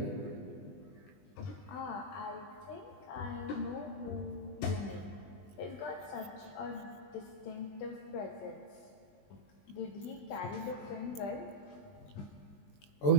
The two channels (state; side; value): late; right; 20 ms